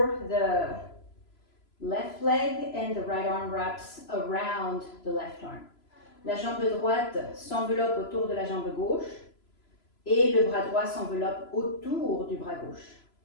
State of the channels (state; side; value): late; right; 3.0 ms